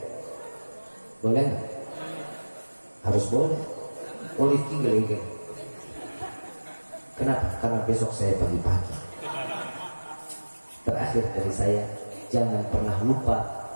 Boleh nggak? Harus boleh. Boleh tinggal ini. Kenapa? Karena besok saya pagi-pagi. Terakhir dari saya, jangan pernah lupa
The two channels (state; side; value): inverted; both; correlation -1.00